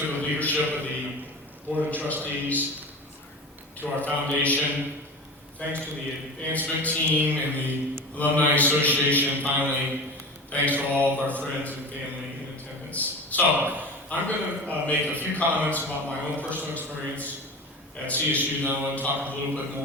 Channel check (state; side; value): normal; both; correlation 0.31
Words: to the leadership of the Board of Trustees, to our foundation. Thanks to the advancement team and the Alumni Association. Finally, thanks to all of our friends and family in attendance. So, I'm going to make a few comments about my own personal experience at CSU, and then I want to talk a little bit